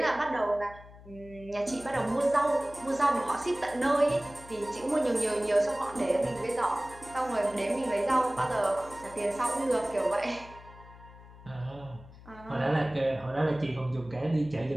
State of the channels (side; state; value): left; noise; hum, 19 dB below the sound